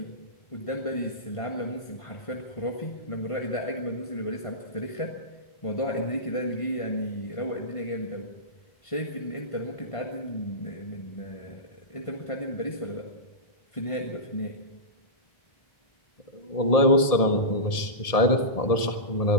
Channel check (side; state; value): right; late; 1.7 ms